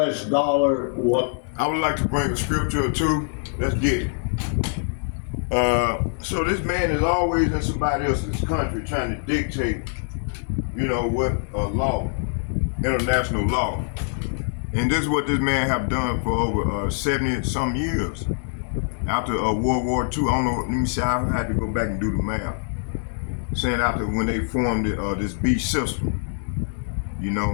dollar, what? I would like to bring a scripture or two. Let's get it. So this man is always in somebody else's country trying to dictate, what law, international law. And this is what this man have done for over 70 some years. After World War II, I don't know, let me see, I had to go back and do the math. Saying after when they formed this beach system,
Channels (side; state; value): right; silent; 63 dB below the other